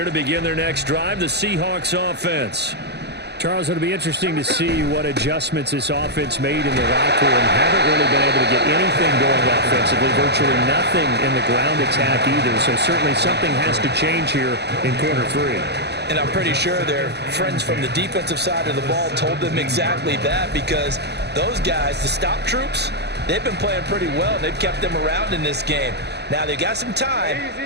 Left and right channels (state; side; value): late; left; 0.49 ms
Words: to begin their next drive, the Seahawks offense. Charles, it'll be interesting to see what adjustments this offense made in the locker room. Haven't really been able to get anything going offensively, virtually nothing in the ground attack either. So certainly something has to change here in quarter 3. And I'm pretty sure their friends from the defensive side of the ball told them exactly that, because those guys, the stop troops, they've been playing pretty well. They've kept them around in this game. Now, they've got some time.